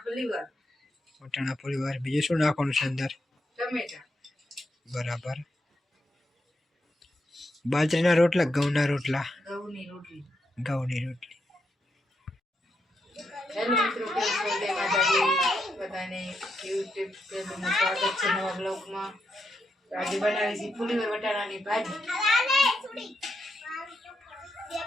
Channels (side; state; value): both; normal; correlation 0.82